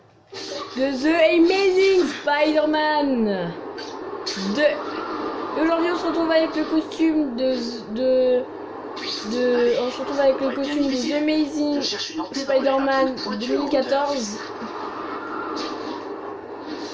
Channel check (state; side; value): identical; both; correlation 1.00